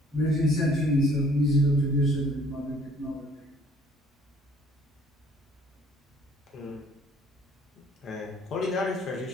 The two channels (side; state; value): both; normal; correlation 0.58